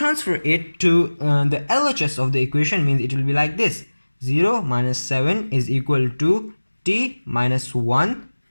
it to the LHS of the equation, means it will be like this: 0 minus 7 is equal to t minus 1,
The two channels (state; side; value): inverted; both; correlation -1.00